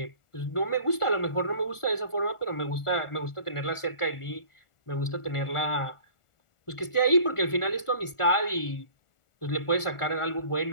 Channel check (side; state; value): right; late; 1.4 ms